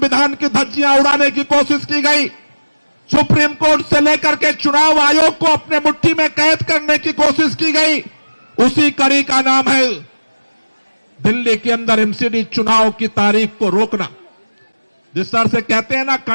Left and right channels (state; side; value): inverted; both; correlation -1.00